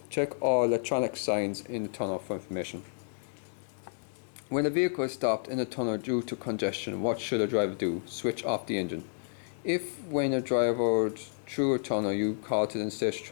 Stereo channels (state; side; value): silent; right; digital silence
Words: Check all electronic signs in the tunnel for information. When a vehicle is stopped in a tunnel due to congestion, what should a driver do? Switch off the engine. If when a driver through a tunnel you call to the interstate